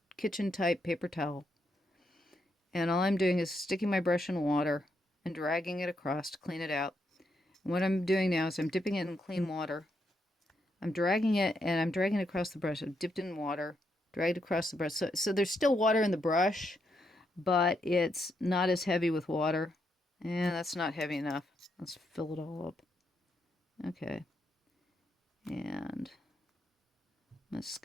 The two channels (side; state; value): both; normal; correlation 0.79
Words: kitchen type paper towel. And all I'm doing is sticking my brush in water and dragging it across to clean it out. And what I'm doing now is I'm dipping it in clean water. I'm dragging it, and I'm dragging it across the brush. I've dipped it in water, dragged across the brush. So there's still water in the brush, but it's not as heavy with water. And that's not heavy enough. Let's fill it all up. Okay. And I'm going to